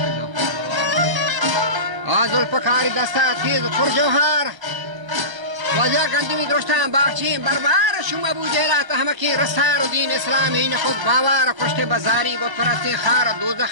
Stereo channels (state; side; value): late; left; 1.3 ms